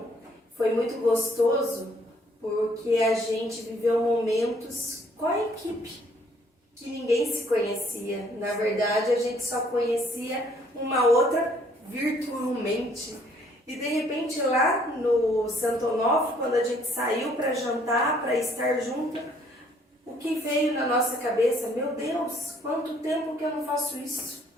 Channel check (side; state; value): both; normal; correlation 0.63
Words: foi muito gostoso, porque a gente viveu momentos com a equipe que ninguém se conhecia. Na verdade, a gente só conhecia uma outra virtualmente. E de repente lá no Santo Onofre, quando a gente saiu para jantar, para estar junto, o que veio na nossa cabeça? Meu Deus, quanto tempo que eu não faço isso?